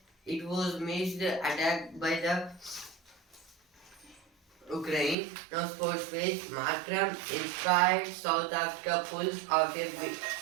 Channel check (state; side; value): drops out; left; at 5.2 s